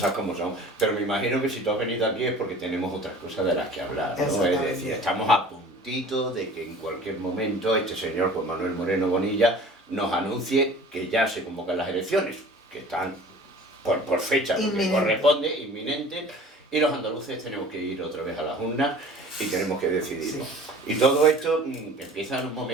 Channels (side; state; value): both; normal; correlation 0.45